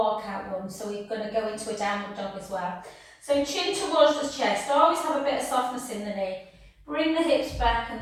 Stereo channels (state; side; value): identical; both; correlation 1.00